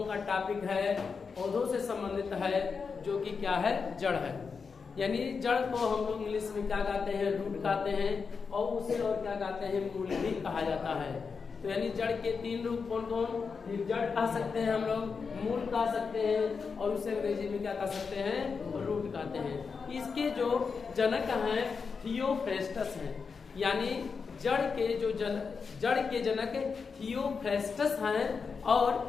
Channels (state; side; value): quieter; right; 5.3 dB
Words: का टॉपिक है पौधों से संबंधित है, जो कि क्या है, जड़ है। यानी जड़ को हम लोग इंग्लिश में क्या कहते हैं, रूट कहते हैं, और उसे और क्या कहते हैं, मूल भी कहा जाता है। तो यानी जड़ के तीन रूप कौन कौन, जड़ कह सकते हैं हम लोग, मूल कह सकते हैं, और उसे अंग्रेजी में क्या कह सकते हैं, रूट कहते हैं। इसके जो जनक हैं थियोफ्रेस्टस हैं, यानी जड़ के जनक थियोफ्रेस्टस हैं। और